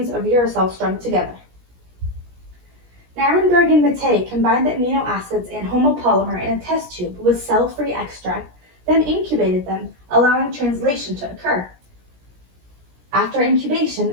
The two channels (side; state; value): left; late; 17 ms